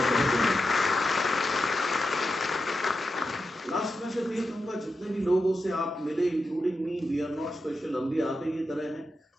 लास्ट में सिर्फ ये कहूँगा, लोगों से आप मिले, including me, we are not special, हम भी आप ही की तरह हैं।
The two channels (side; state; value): both; normal; correlation 0.88